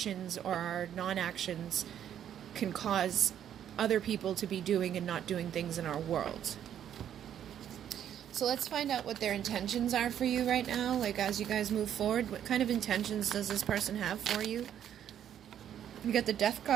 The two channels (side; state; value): left; quieter; 10.0 dB